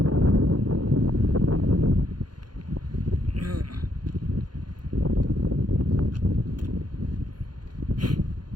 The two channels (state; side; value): late; left; 0.70 ms